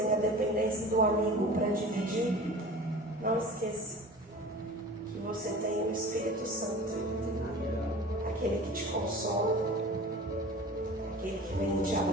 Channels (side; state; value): both; normal; correlation 0.39